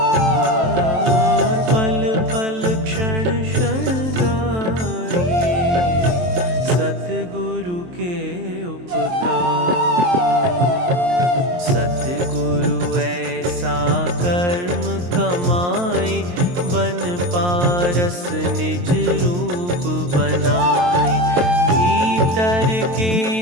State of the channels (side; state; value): left; late; 23 ms